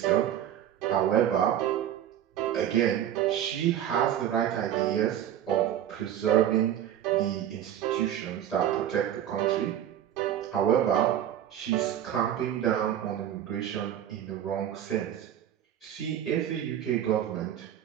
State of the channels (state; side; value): quieter; left; 10.8 dB